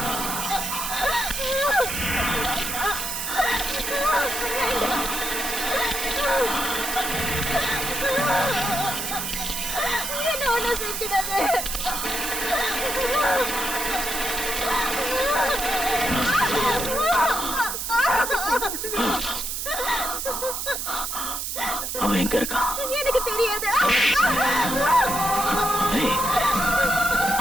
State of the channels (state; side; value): noise; right; hiss, 3 dB below the sound